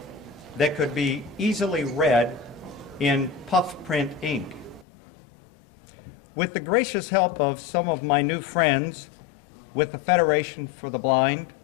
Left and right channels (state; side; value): drops out; right; at 4.9 s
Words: that could be easily read in puff print ink. With the gracious help of some of my new friends with the Federation for the Blind,